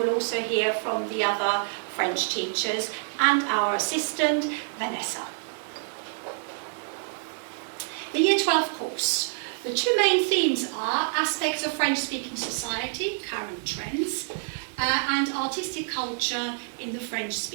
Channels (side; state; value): left; silent; digital silence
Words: also hear from the other French teachers and our assistant, Vanessa. The Year 12 course. The two main themes are aspects of French-speaking society, current trends, and artistic culture in the